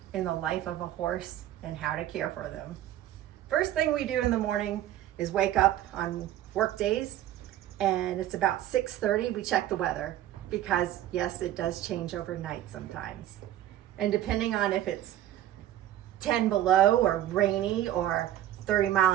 in the life of a horse and how to care for them. First thing we do in the morning is wake up on work days, and it's about 6:30. We check the weather because yes, it does change overnight sometimes. And depending on if it's 10 below or rainy or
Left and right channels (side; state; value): left; quieter; 12.7 dB